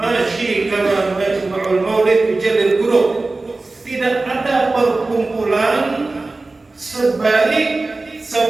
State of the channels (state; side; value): quieter; left; 3.3 dB